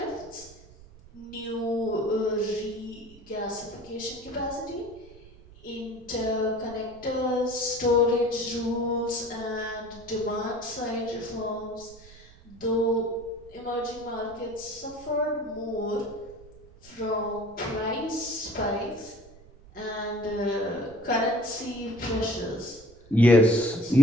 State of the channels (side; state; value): right; noise; rumble, 21 dB below the sound